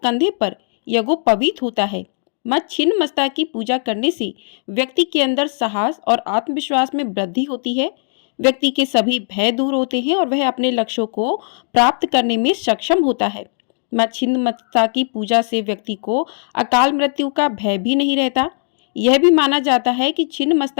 कंधे पर यज्ञोपवीत होता है। माँ छिन्नमस्ता की पूजा करने से व्यक्ति के अंदर साहस और आत्मविश्वास में वृद्धि होती है। व्यक्ति के सभी भय दूर होते हैं और वह अपने लक्ष्यों को प्राप्त करने में सक्षम होता है। माँ छिन्नमस्ता की पूजा से व्यक्ति को अकाल मृत्यु का भय भी नहीं रहता। यह भी माना जाता है कि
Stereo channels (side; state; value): right; silent; digital silence